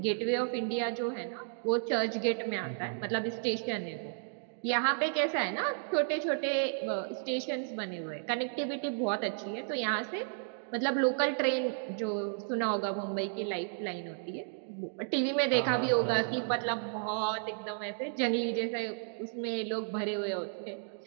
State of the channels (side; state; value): left; silent; digital silence